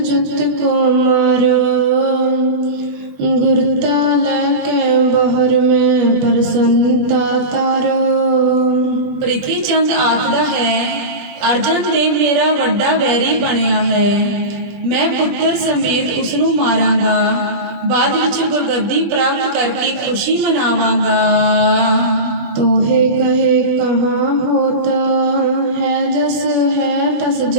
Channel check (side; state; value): left; late; 20 ms